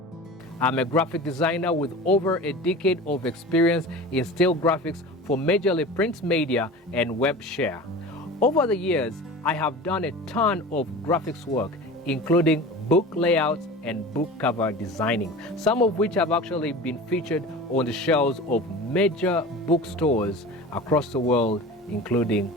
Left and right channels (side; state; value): both; normal; correlation 0.35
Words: I'm a graphic designer with over a decade of experience in still graphics for majorly print media and web share. Over the years, I have done a ton of graphics work, including book layouts and book cover designing, some of which have actually been featured on the shelves of major bookstores across the world, including